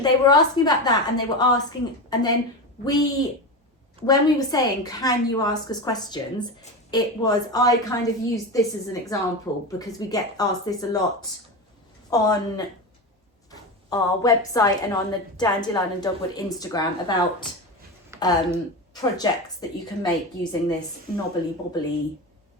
they were asking about that, and they were asking, and then when we were saying, can you ask us questions, it was, I kind of used this as an example because we get asked this a lot on our website and on the Dandelion Dogwood Instagram about projects that you can make using this knobbly bobbly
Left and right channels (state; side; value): normal; both; correlation 0.21